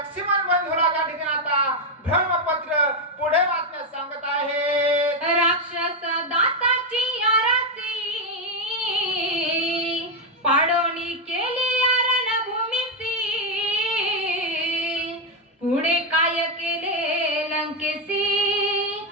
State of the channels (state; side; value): normal; both; correlation 0.05